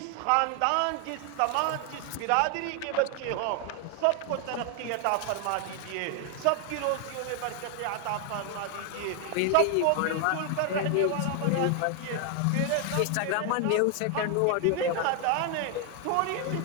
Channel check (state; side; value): different; both; correlation 0.00